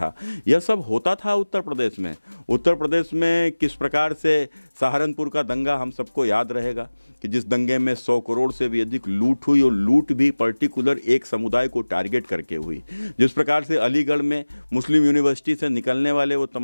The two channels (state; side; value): inverted; both; correlation -1.00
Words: यह सब होता था उत्तर प्रदेश में। उत्तर प्रदेश में किस प्रकार से सहारनपुर का दंगा हम सबको याद रहेगा कि जिस दंगे में 100 करोड़ से भी अधिक लूट हुई, और लूट भी पर्टिकुलर एक समुदाय को टारगेट करके हुई। जिस प्रकार से अलीगढ़ में मुस्लिम यूनिवर्सिटी से निकलने वाले वो